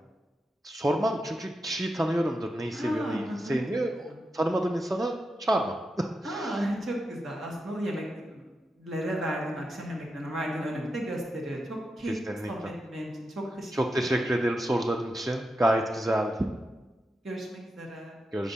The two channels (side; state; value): both; normal; correlation 0.87